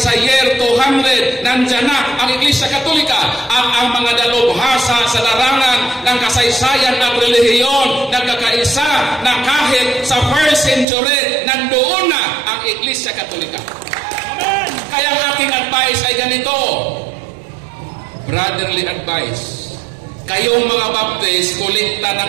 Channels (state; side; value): drops out; left; at 10.9 s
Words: year 200 nandyan na ang Iglesia Katolika at ang mga dalubhasa sa larangan ng kasaysayan at relihiyon nagkakaisa na kahit sa first century nandoon na ang Iglesia Katolika. Kaya ang aking advice ay ganito, brotherly advice. Kayong mga Baptist,